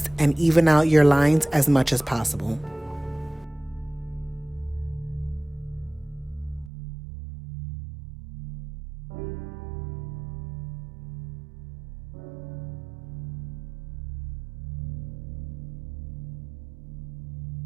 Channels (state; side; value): drops out; left; at 6.7 s